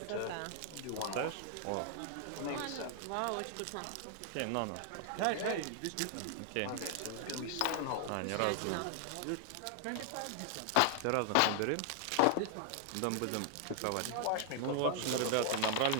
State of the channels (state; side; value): different; both; correlation 0.00